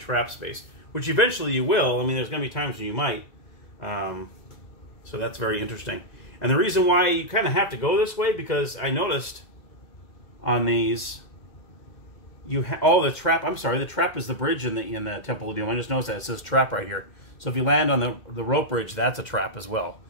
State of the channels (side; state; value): right; late; 2.3 ms